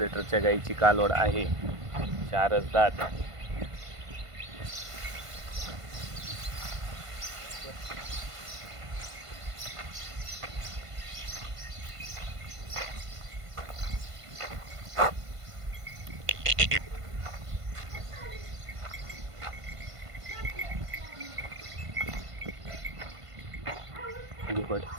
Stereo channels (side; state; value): left; late; 1.5 ms